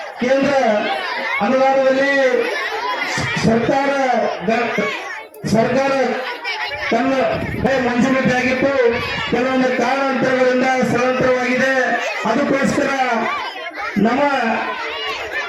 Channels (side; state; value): both; identical; correlation 1.00